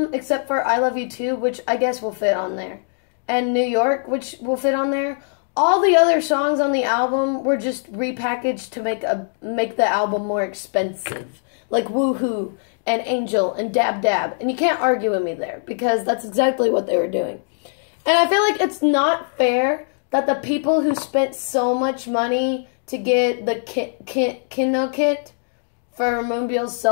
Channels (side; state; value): right; silent; digital silence